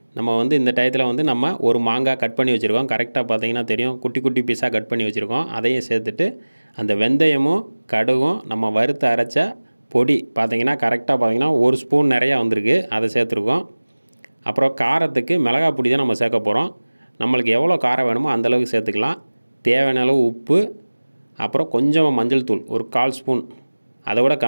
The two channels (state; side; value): inverted; both; correlation -1.00